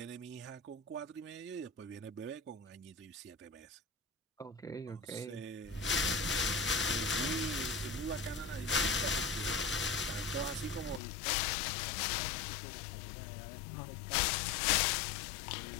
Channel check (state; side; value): drops out; right; at 11.0 s